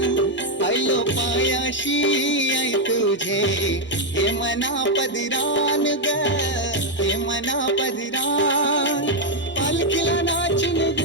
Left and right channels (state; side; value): normal; both; correlation 0.01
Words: आयलो पायाशी आई तुझे हे मना पदरान ग हे मना पदरान पालखीला नाचिन